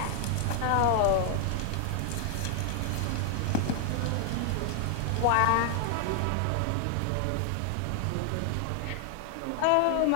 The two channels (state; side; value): different; both; correlation 0.00